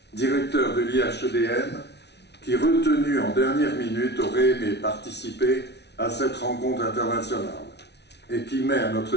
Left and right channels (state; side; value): late; right; 0.50 ms